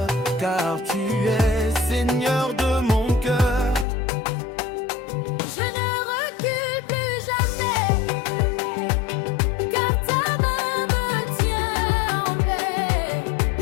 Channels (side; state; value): right; drops out; at 3.9 s